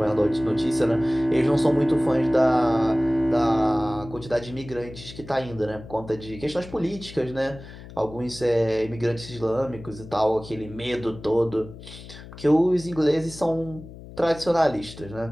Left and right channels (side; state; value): left; noise; hum, 16 dB below the sound